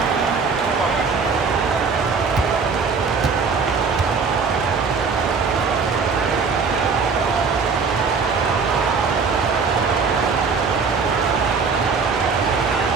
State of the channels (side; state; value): left; quieter; 5.1 dB